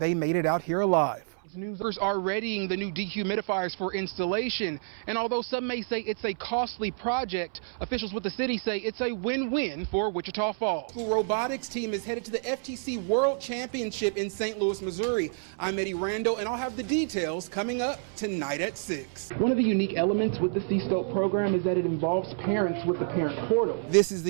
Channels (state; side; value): silent; left; 59 dB below the other